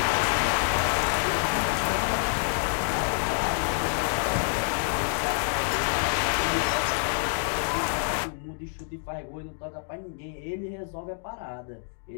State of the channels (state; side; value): silent; right; digital silence